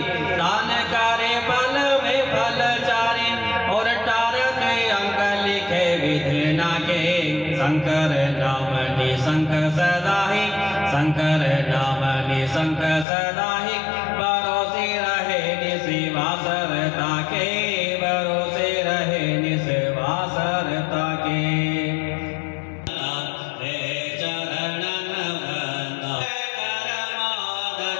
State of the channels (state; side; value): drops out; right; at 13.1 s